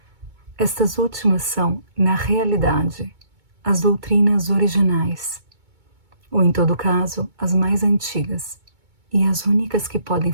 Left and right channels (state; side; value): late; left; 2.2 ms